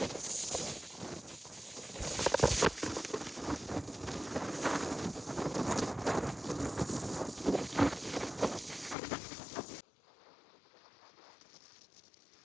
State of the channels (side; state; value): right; drops out; at 9.0 s